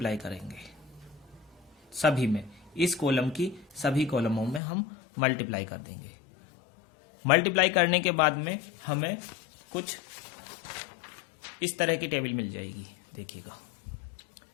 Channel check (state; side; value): drops out; right; at 4.6 s